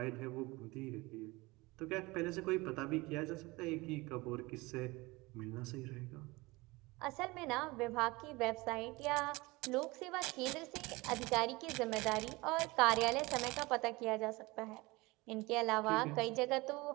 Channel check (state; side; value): quieter; left; 22.8 dB